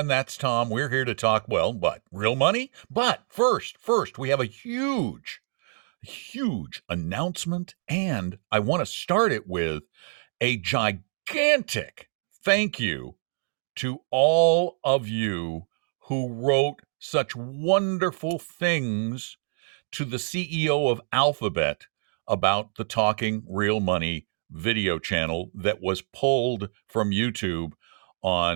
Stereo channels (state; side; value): silent; left; digital silence